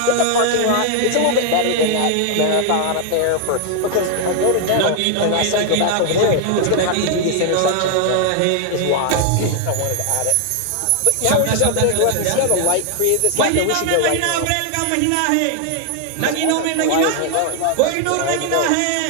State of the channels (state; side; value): different; both; correlation 0.00